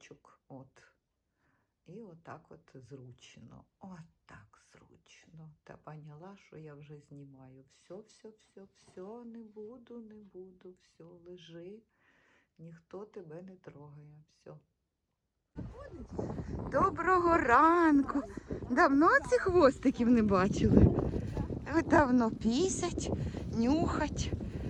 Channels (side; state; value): both; identical; correlation 1.00